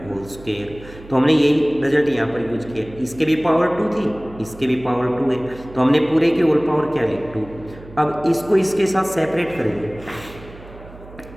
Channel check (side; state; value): right; noise; hum, 19 dB below the sound